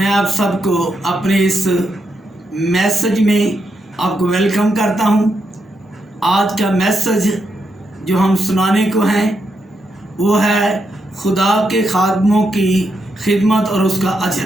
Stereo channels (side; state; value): both; normal; correlation 0.82